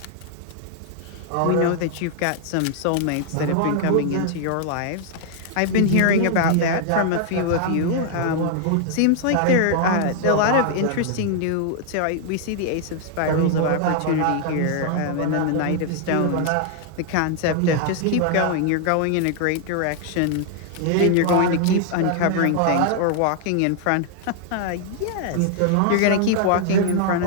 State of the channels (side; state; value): both; different; correlation 0.00